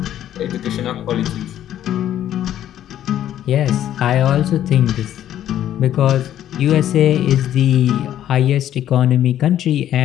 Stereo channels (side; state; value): right; quieter; 11.5 dB